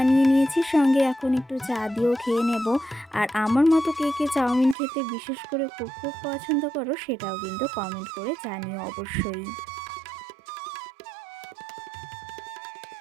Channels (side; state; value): left; drops out; at 4.8 s